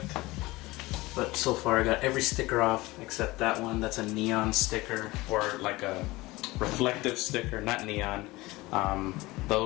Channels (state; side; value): quieter; right; 20.6 dB